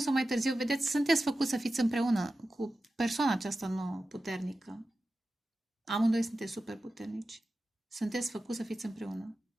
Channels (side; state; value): both; normal; correlation 0.93